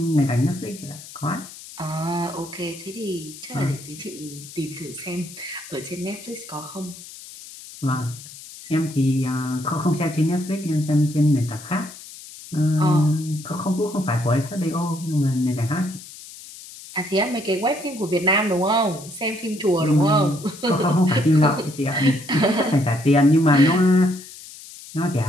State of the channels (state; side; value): noise; left; hiss, 16 dB below the sound